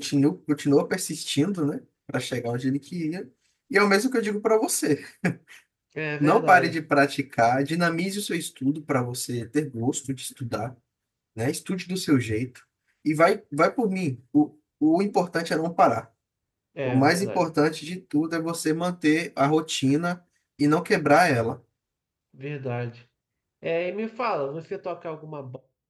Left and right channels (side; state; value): both; identical; correlation 1.00